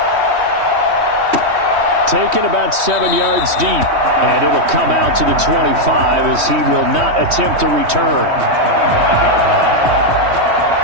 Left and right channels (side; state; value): left; late; 3.1 ms